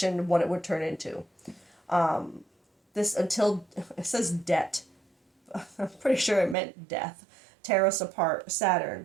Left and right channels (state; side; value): drops out; left; at 6.6 s